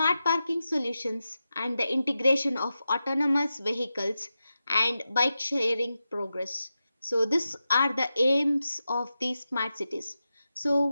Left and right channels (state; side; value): inverted; both; correlation -0.91